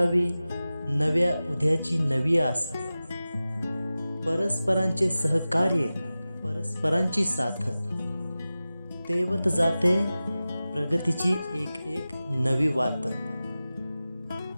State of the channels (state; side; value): inverted; both; correlation -0.96